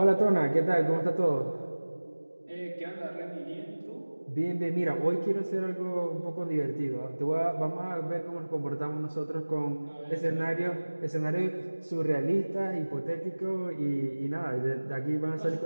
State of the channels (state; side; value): inverted; both; correlation -1.00